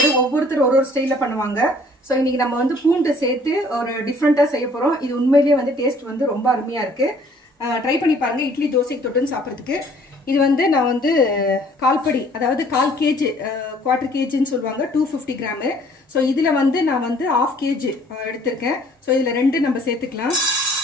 ஒவ்வொருத்தர் ஒரு ஸ்டைல்ல பண்ணுவாங்க. சோ இன்னைக்கு நம்ம வந்து பூண்டு சேர்த்து ஒரு டிஃபரண்டா செய்ய போறோம். இது உண்மையிலேயே வந்து டேஸ்ட் வந்து ரொம்ப அருமையா இருக்கு. ட்ரை பண்ணி பாருங்க இட்லி தோசைக்கு தொட்டுன்னு சாப்பிடுறதுக்கு. இது வந்து நான் வந்து கால்படி அதாவது 1/4 kg quarter kgன்னு சொல்வாங்க 250 கிராம். சோ இதுல வந்து நான் வந்து 1/2 kg எடுத்துர்க்கேன். சோ இதுல ரெண்டு நம்ம சேர்த்துக்கலாம்.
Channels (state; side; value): normal; both; correlation 0.57